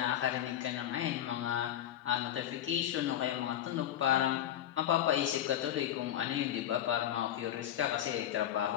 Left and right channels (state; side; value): quieter; right; 11.4 dB